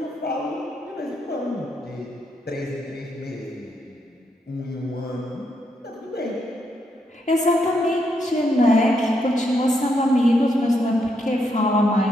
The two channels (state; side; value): normal; both; correlation 0.79